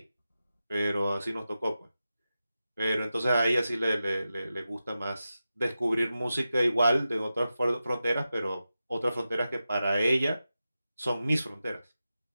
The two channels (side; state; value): both; inverted; correlation -0.92